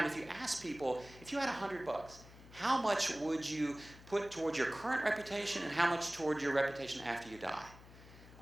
if you ask people, if you had $100, how much would you put towards your current reputation and how much toward your reputation after you die?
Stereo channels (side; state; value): left; noise; hum, 19 dB below the sound